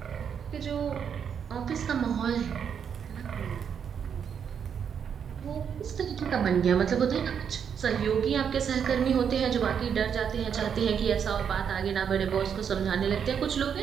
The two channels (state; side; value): quieter; left; 7.6 dB